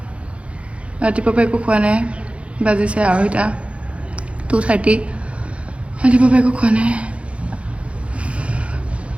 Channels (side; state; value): left; late; 0.061 ms